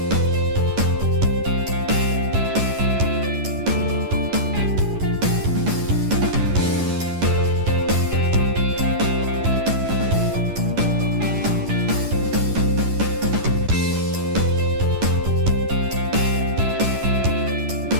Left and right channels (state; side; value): late; left; 11 ms